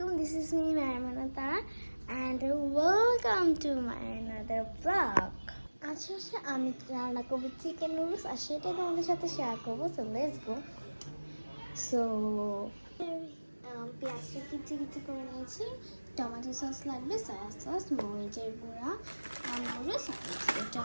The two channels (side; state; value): both; inverted; correlation -1.00